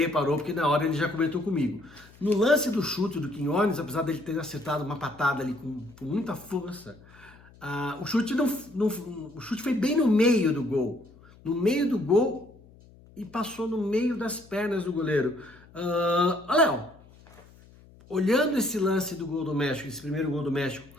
porque na hora ele já comentou comigo. No lance do chute do Quiñones, apesar dele ter acertado uma patada ali com muita força, o chute foi bem no meio do gol. No meio do gol, e passou no meio das pernas do goleiro. Léo, olhando esse lance do gol do México, esse primeiro gol do México,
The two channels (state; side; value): noise; left; hum, 24 dB below the sound